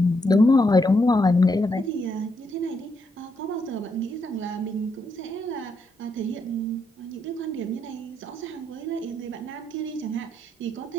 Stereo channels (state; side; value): normal; both; correlation 0.78